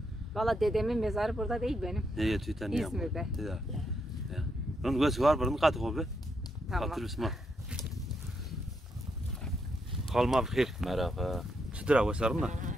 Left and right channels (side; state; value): both; normal; correlation 0.80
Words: Valla dedemin mezarı burada değil benim. Neye tüyten ya? İzmir'de. Bunun gözü var, bunun katı kobi. Tamam. Hatırlısın. Kalma bixir. Merhaba. Çıtıra vasarım da.